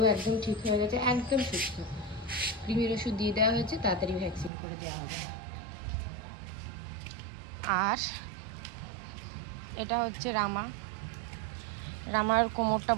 একদম ঠিক হয়ে গেছে, একদম সুস্থ। কৃমির ওষুধ দিয়ে দেওয়া হয়েছে, তাড়াতাড়ি ভ্যাকসিন করে দেওয়া হবে। আর এটা হচ্ছে রামার কোমরটা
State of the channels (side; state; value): left; drops out; at 4.5 s